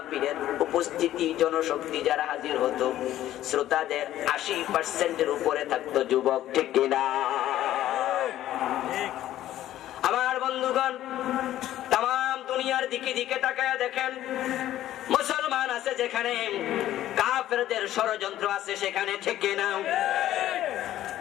উপস্থিতি জনশক্তি যারা হাজির হতো, শ্রোতাদের 80%-এর উপরে থাকতো যুবক, ঠিক কিনা? আমার বন্ধুগণ, তাম দুনিয়ার দিকে দিকে তাকায় দেখেন, মুসলমান আছে যেখানে, কাফেরদের ষড়যন্ত্র আছে সেখানে, ঠিক কিনা?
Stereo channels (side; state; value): right; quieter; 13.2 dB